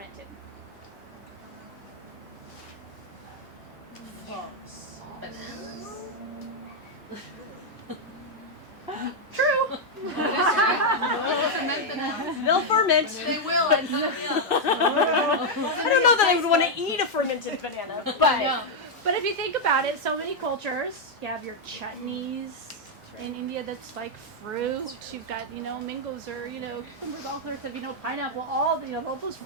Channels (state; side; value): normal; both; correlation -0.01